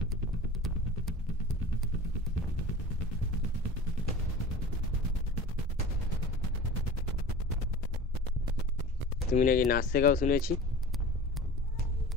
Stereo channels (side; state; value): both; normal; correlation 0.38